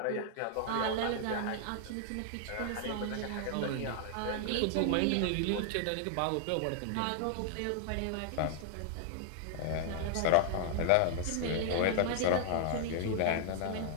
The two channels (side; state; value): both; different; correlation -0.01